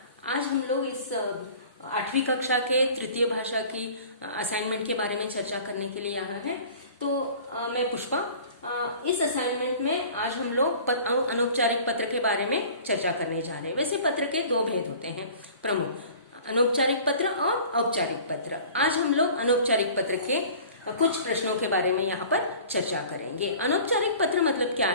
आज हम लोग इस 8वीं कक्षा के तृतीय भाषा की असाइनमेंट के बारे में चर्चा करने के लिए यहाँ हैं। तो मैं पुष्पा। इस असाइनमेंट में आज हम लोग अनौपचारिक पत्र के बारे में चर्चा करने जा रहे हैं। वैसे पत्र के दो भेद होते हैं प्रमुख, अनौपचारिक पत्र और औपचारिक पत्र। आज हम लोग अनौपचारिक पत्र के कुछ प्रश्नों के बारे में यहाँ पर चर्चा करेंगे। अनौपचारिक पत्र मतलब क्या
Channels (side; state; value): both; inverted; correlation -0.45